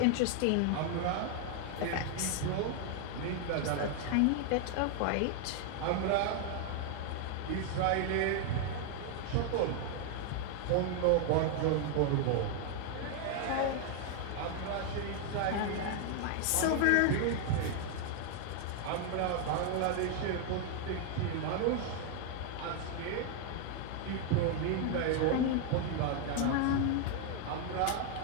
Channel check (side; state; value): both; different; correlation 0.00